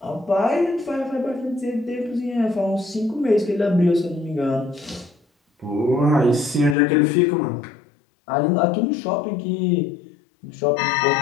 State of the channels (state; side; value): drops out; right; at 6.8 s